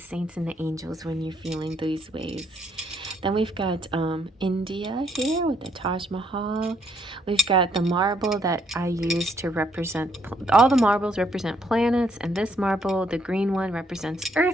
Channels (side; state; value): both; normal; correlation 0.71